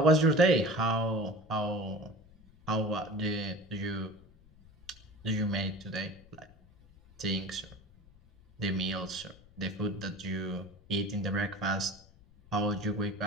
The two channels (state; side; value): noise; left; rumble, 25 dB below the sound